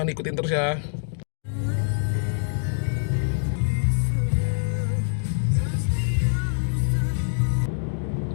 ikutin terus ya.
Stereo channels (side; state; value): right; silent; digital silence